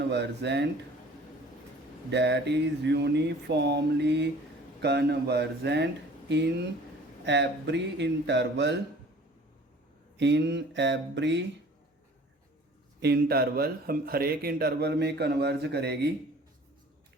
that is uniformly convergent in every interval, in every interval, हम हर एक इंटरवल में कन्वर्ज करेगी,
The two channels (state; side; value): normal; both; correlation 0.49